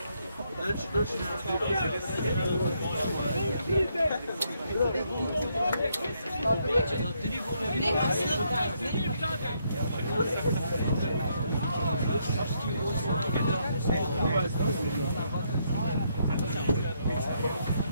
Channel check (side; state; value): both; inverted; correlation -0.74